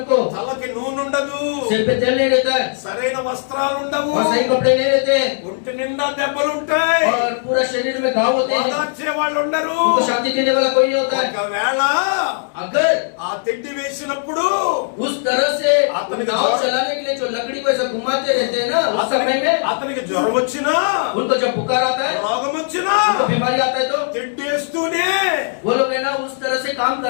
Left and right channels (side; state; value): right; silent; 67 dB below the other